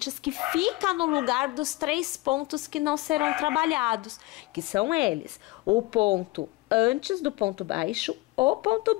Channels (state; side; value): quieter; right; 20.6 dB